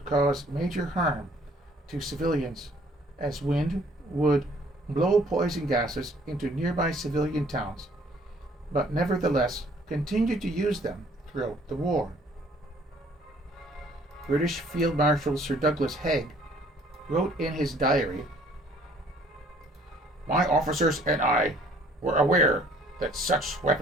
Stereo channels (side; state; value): both; normal; correlation 0.59